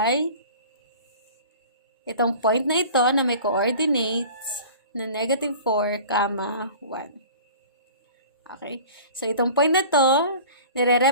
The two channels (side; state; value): both; inverted; correlation -0.42